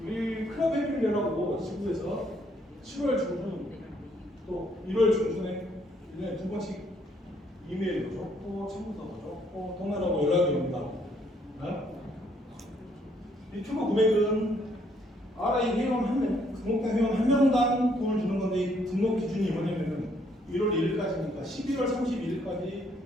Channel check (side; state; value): both; normal; correlation 0.68